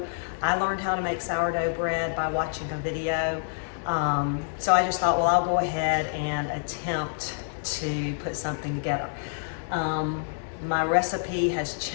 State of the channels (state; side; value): silent; right; digital silence